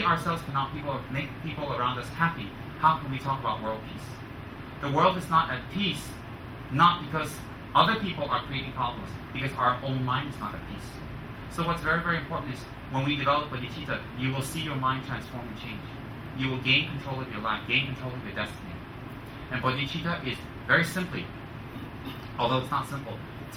ourselves cannot make people around us happy, how can we talk about world peace? The world is not at peace, not because other people are creating problems, because our own mind is not at peace. So what's very, very important is when we develop bodhicitta, you will see your mind transform and change. You will gain control of your life, gain control of your destiny. And bodhicitta is very simply, although it's not simple,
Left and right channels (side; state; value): both; identical; correlation 1.00